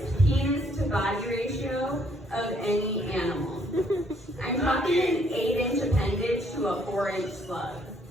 penis to body ratio of any animal. I'm talking an 8-inch appendage to a 4-inch slug.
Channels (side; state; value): both; normal; correlation 0.67